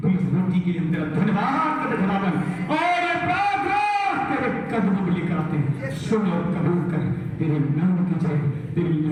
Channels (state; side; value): identical; both; correlation 1.00